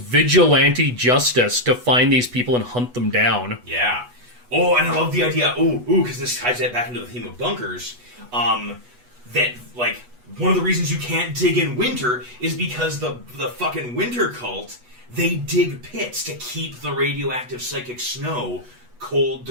justice to find these people and hunt them down. Yeah. Oh, and I love the idea. Because this ties that back into the theme of bunkers. That like one of the reasons you can't dig in winter is because the fucking winter cult, they dig pits to keep the radioactive psychic snow cold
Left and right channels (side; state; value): left; late; 8.2 ms